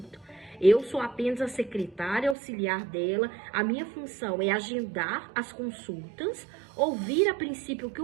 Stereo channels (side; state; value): left; drops out; at 2.4 s